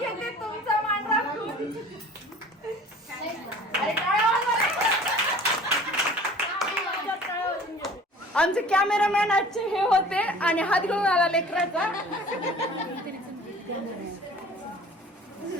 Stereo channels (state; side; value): normal; both; correlation 0.47